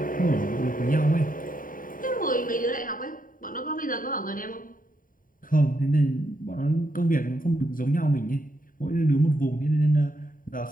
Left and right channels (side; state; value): right; late; 0.40 ms